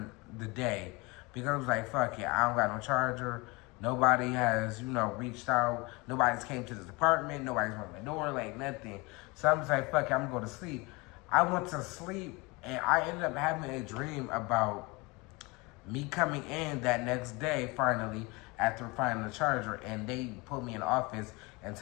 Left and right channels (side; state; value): right; quieter; 25.7 dB